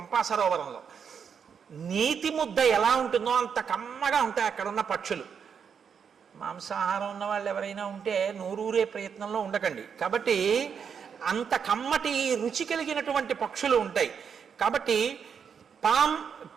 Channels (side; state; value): left; quieter; 6.9 dB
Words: సరోవరంలో. నీతి ముద్ద ఎలా ఉంటుందో అంత కమ్మగా ఉంటాయి అక్కడ ఉన్న పక్షులు. మాంసాహారం ఉన్న వాళ్ళు ఎవరైనా ఉంటే నూరూరే ప్రయత్నంలో ఉండకండి. కాబట్టి అంత కమ్మటి రుచి కలిగినటువంటి పక్షులు ఉంటాయి. కాబట్టి